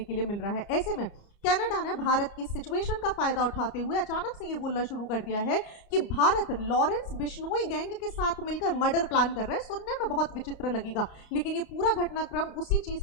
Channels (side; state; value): right; late; 31 ms